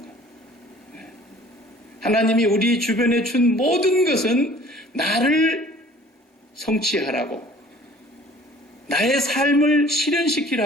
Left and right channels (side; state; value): both; normal; correlation 0.50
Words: 하나님이 우리 주변에 준 모든 것은 나를 성취하라고, 나의 삶을